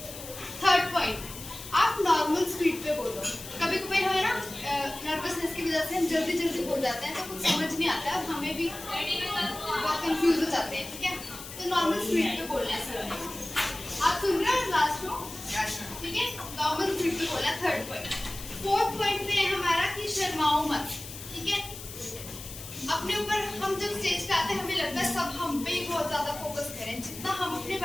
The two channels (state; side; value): noise; left; hiss, 12 dB below the sound